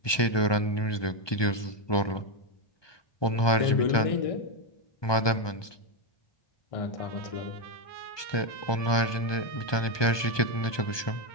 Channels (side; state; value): right; late; 1.2 ms